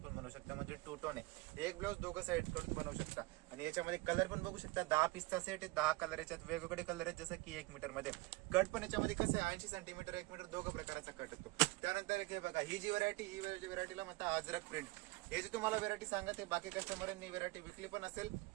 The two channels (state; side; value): quieter; left; 22.5 dB